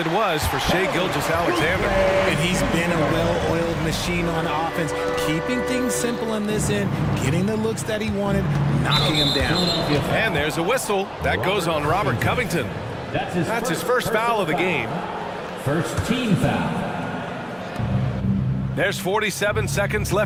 was for Shai Gilgeous-Alexander. And he's been a well-oiled machine on offense, keeping things simple in this end, getting the looks that he wanted, knocking him down. And there's a whistle. That goes on Robert Covington. That's his first foul of the game. First team foul. There's 47 seconds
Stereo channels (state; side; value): identical; both; correlation 1.00